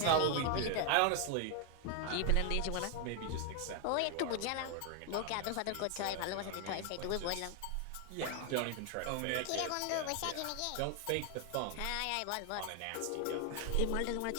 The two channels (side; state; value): both; different; correlation 0.01